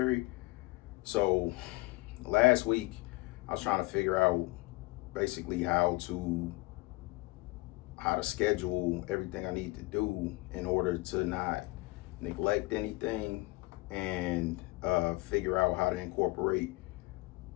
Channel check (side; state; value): right; quieter; 22.6 dB